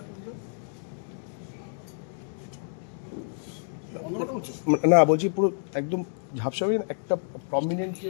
না বলছি পুরো একদম ঝাপসা হয়ে একটা প্রমিনেন্ট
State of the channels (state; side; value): silent; right; digital silence